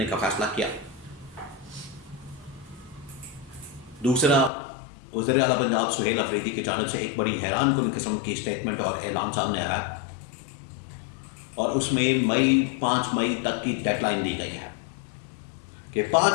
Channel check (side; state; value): right; drops out; at 4.5 s